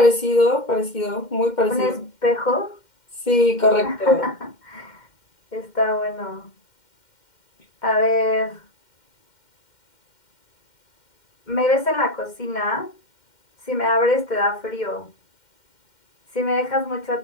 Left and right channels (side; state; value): right; late; 2.1 ms